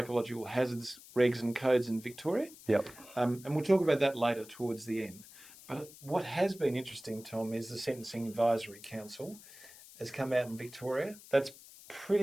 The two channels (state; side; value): noise; left; hiss, 19 dB below the sound